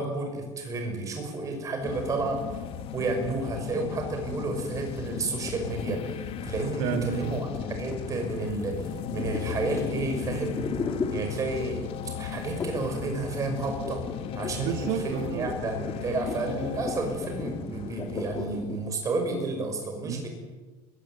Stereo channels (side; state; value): both; normal; correlation 0.41